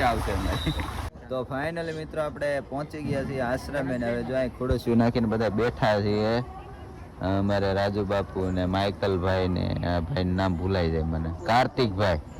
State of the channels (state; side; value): identical; both; correlation 1.00